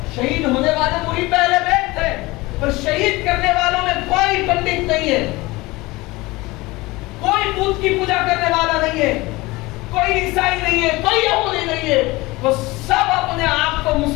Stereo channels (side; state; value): right; quieter; 21.4 dB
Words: شہید ہونے والے وہی پہلے بیت تھے, پر شہید کرنے والوں میں کوئی پنڈت نہیں ہے, کوئی بت کی پوجا کرنے والا نہیں ہے, کوئی عیسائی نہیں ہے, کوئی یہودی نہیں ہے. وہ سب اپنے آپ کو